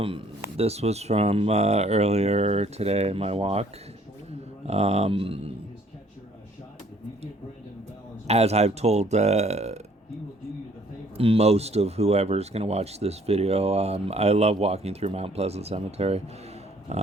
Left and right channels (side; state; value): both; normal; correlation 0.60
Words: This was from earlier today, my walk. Um, as I've told most of whoever's going to watch this video, I love walking through Mount Pleasant Cemetery.